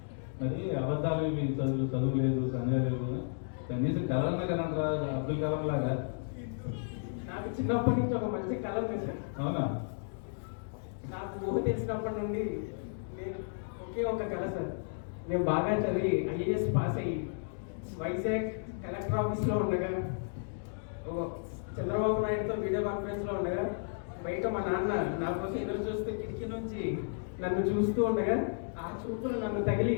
మరి అబద్ధాలు ఇవి చదువు లేదు, దంజా లేదు, కనీసం కలర్న కలంటరా అబ్దుల్ కలాం లాగా. నాకు చిన్నప్పటి నుంచి ఒక మంచి కళ ఉంది సార్. అవునా? నాకు ఊహ తెలిసినప్పటి నుండి నేను ఒకే ఒక కళ సార్. నేను బాగా చదివి ఐఏఎస్ పాస్ అయ్యి వైజాగ్ కలెక్టర్ ఆఫీస్లో ఉండగా, చంద్రబాబు నాయుడుతో వీడియో కాన్ఫరెన్స్లో ఉండగా, బయట మా నాన్న నా కోసం ఎదురు చూస్తూ కిటికీ నుంచి నన్ను చూస్తూ ఉండగా, ఆ చూపులు నన్ను తగిలి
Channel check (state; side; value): silent; right; digital silence